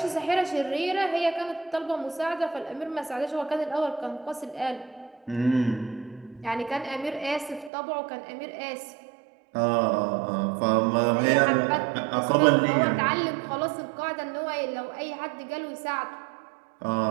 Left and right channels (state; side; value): drops out; left; at 7.7 s